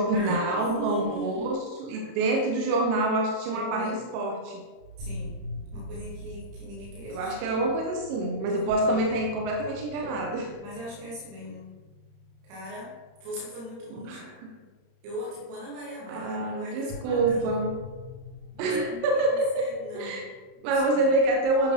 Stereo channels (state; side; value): late; left; 30 ms